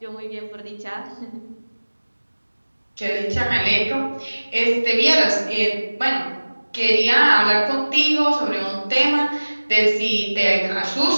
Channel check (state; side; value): inverted; both; correlation -1.00